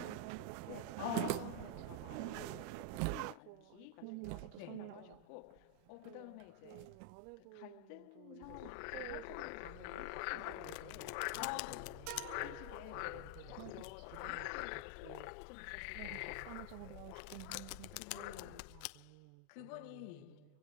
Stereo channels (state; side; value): different; both; correlation 0.00